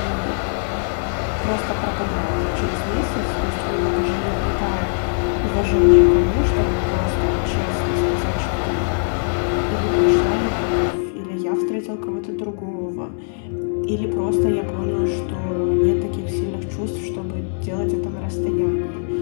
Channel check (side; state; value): right; silent; digital silence